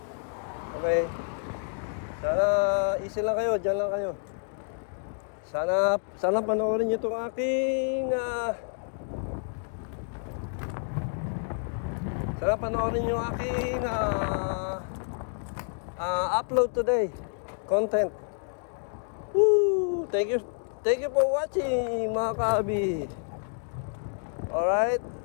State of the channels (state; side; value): silent; right; 58 dB below the other